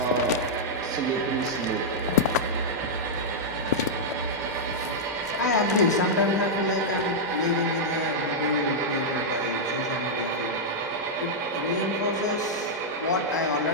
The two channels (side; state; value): both; normal; correlation -0.06